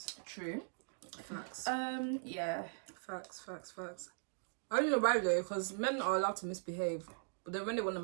True. Facts. Yeah. Facts. I don't know why though, because men are allowed to misbehave, but then when they want to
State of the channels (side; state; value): left; silent; digital silence